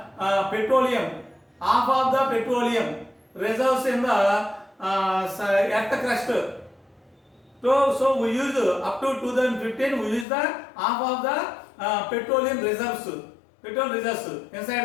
petroleum, half of the petroleum reserves in the earth crust. So we use up to 2015, we use the half of the petroleum reserves, petrol reserves inside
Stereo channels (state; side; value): drops out; right; at 10.2 s